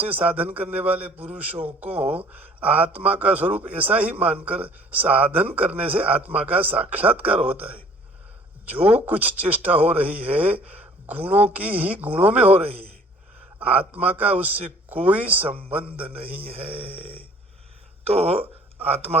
साधन करने वाले पुरुषों को आत्मा का स्वरूप ऐसा ही मानकर साधन करने से आत्मा का साक्षात्कार होता है। जो कुछ चेष्टा हो रही है गुणों की ही गुणों में हो रही है, आत्मा का उससे कोई संबंध नहीं है। तो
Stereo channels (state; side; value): normal; both; correlation 0.54